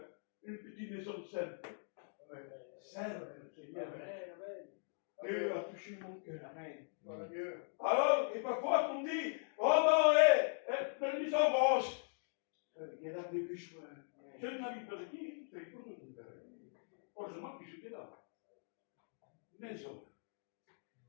une petite maison simple. Simple, Seigneur. Dieu a touché mon cœur. Alors, et parfois, on dit, oh non, la maison rose. Il y a là des bûches. Je n'habite pas ici, c'est pour tout. Heureusement que j'étais là. Maison.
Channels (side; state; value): right; silent; digital silence